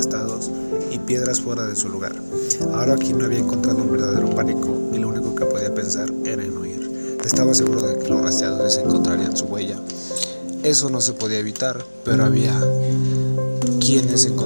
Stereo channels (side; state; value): both; inverted; correlation -1.00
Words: y piedras fuera de su lugar. Ahora Quino había encontrado un verdadero pánico, y lo único que podía pensar era en huir. Estaba seguro de que los rastreadores encontrarían su huella. Eso no se podía evitar, pero había quienes